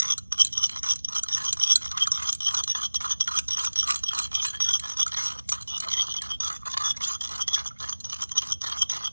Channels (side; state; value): both; inverted; correlation -1.00